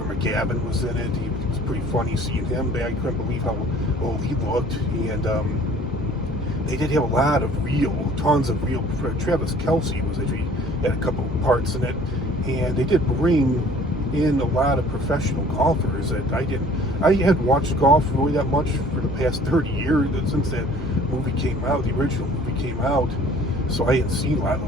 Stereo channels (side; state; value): both; normal; correlation 0.52